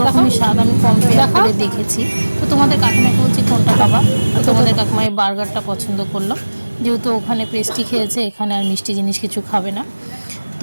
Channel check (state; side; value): inverted; both; correlation -1.00